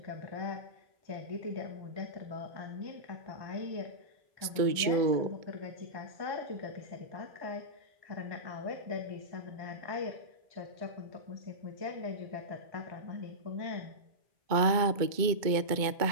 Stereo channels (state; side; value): late; left; 2.2 ms